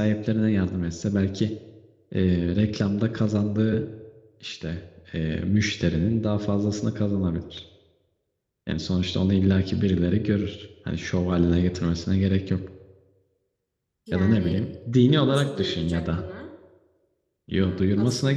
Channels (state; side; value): identical; both; correlation 1.00